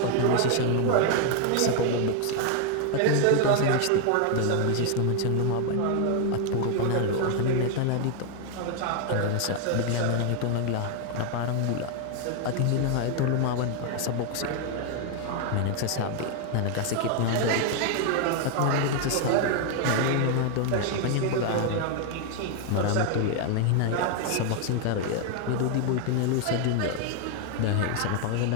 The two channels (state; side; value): different; both; correlation 0.01